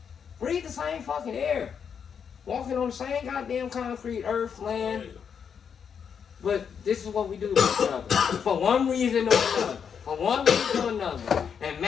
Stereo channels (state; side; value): quieter; right; 7.1 dB